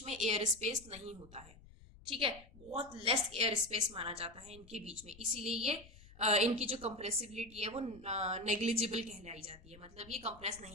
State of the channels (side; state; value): left; noise; rumble, 21 dB below the sound